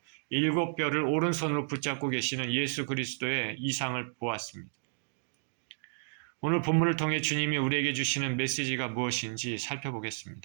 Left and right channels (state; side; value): silent; left; digital silence